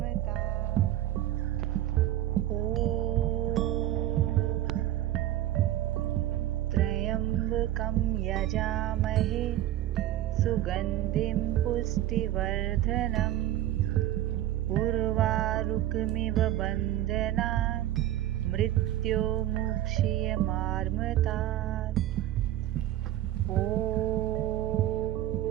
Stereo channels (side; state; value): left; quieter; 13.3 dB